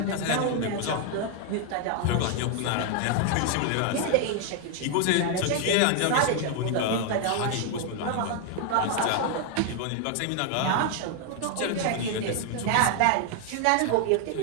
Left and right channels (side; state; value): both; different; correlation 0.00